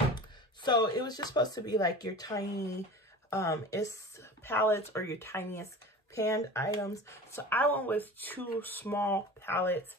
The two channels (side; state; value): both; normal; correlation 0.36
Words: so it was just supposed to be like your tiny palettes or your tiniest panned items. So I went with two small palettes